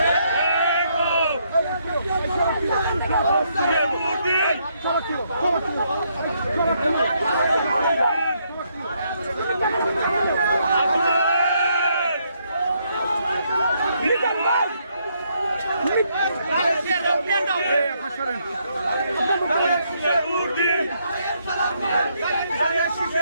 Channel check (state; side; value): inverted; both; correlation -0.74